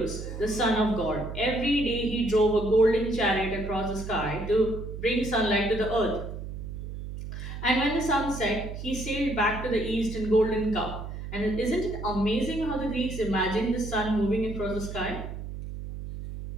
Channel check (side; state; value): right; noise; hum, 8 dB below the sound